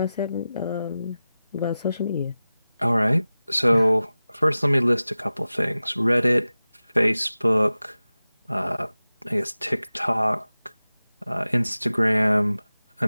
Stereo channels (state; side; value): inverted; both; correlation -0.96